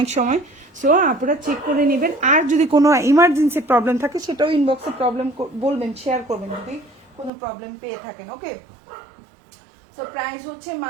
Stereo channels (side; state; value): left; drops out; at 7.3 s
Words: সময়, সো আপনারা চেক করে নেবেন। আর যদি কোনো ইমার্জেন্সি প্রবলেম থাকে সেটাও ইনবক্সে প্রবলেম বলবেন, শেয়ার করবেন যদি কোনো প্রবলেম পেয়ে থাকেন। ওকে, তো প্রাইস হচ্ছে